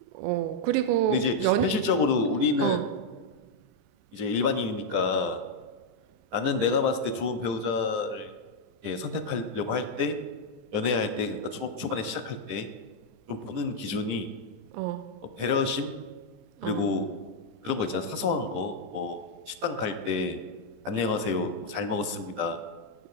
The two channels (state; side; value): late; left; 16 ms